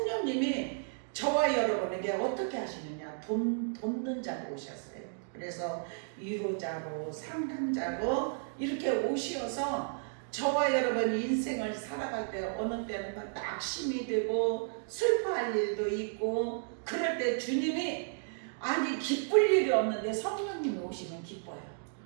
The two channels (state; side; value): silent; left; digital silence